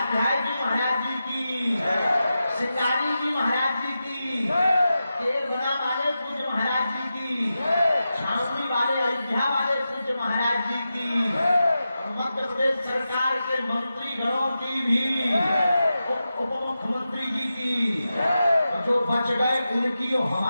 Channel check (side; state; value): both; inverted; correlation -0.91